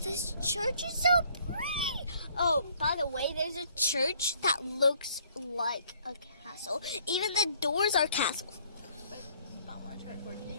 church is so pretty. Oh, by the way, there's a church that looks like a castle. Even the doors are castles. I want to turn towards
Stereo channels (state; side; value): inverted; both; correlation -0.61